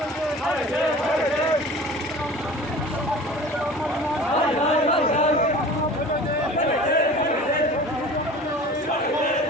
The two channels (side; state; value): both; normal; correlation 0.41